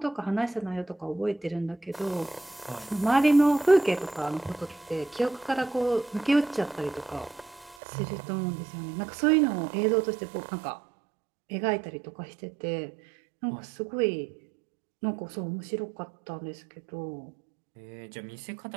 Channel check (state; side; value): drops out; left; at 7.8 s